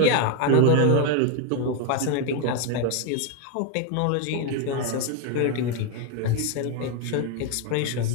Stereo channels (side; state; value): both; different; correlation 0.01